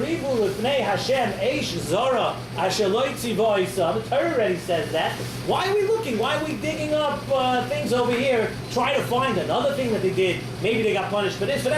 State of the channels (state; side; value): identical; both; correlation 1.00